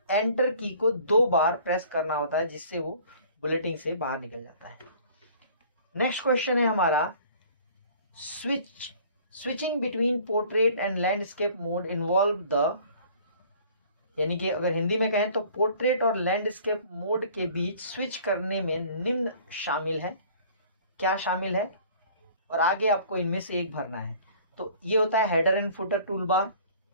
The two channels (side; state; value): both; inverted; correlation -0.51